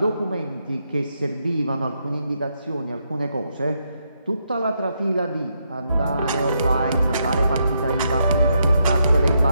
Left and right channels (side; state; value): both; inverted; correlation -0.79